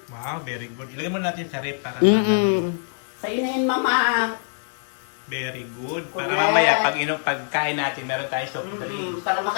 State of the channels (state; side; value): silent; right; 63 dB below the other